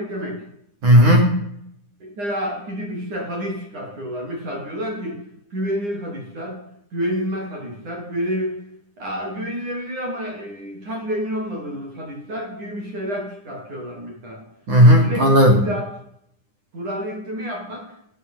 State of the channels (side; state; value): left; late; 9.9 ms